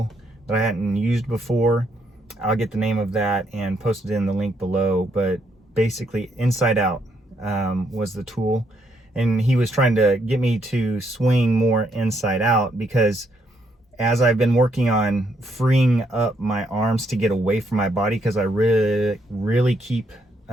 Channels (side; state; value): both; normal; correlation 0.74